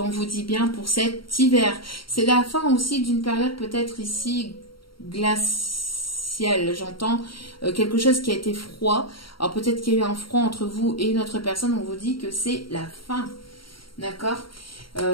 vous dit bien pour cet hiver. C'est la fin aussi d'une période peut-être ici glaciale, j'entends quelque chose qui a été froid. Alors peut-être qu'il y a eu un froid entre vous et une autre personne, on vous dit que c'est la fin, d'accord?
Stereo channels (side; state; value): right; late; 0.73 ms